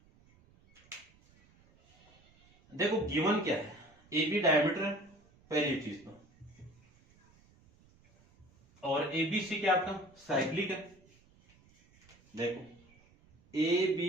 देखो गिवन क्या है, ए बी डायमीटर पहली चीज तो, और ए बी सी क्या आपका साइक्लिक है। देखो A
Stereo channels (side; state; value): right; noise; rumble, 30 dB below the sound